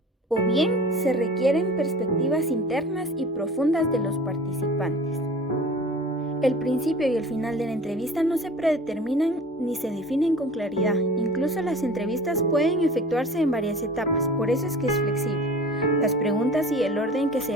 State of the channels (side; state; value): both; normal; correlation 0.41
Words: O bien se requieren perspectivas internas y profundas de los participantes. El principio y el final de la entrevista no se predeterminan ni se definen con claridad. Incluso las entrevistas pueden efectuarse en varias etapas, por eso es que es flexible. Las preguntas y el orden que